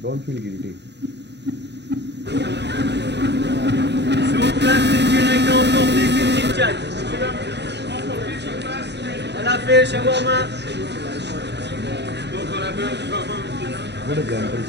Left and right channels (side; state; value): left; late; 0.50 ms